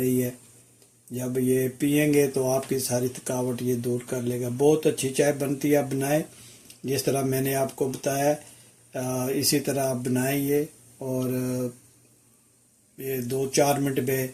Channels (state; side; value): identical; both; correlation 1.00